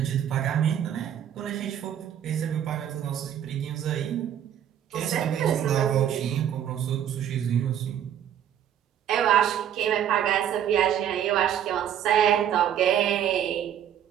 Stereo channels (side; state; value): left; quieter; 10.0 dB